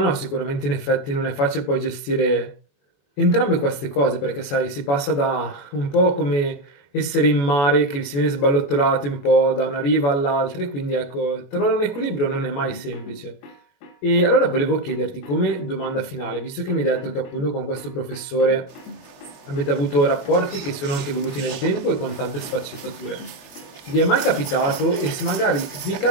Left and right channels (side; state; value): right; late; 22 ms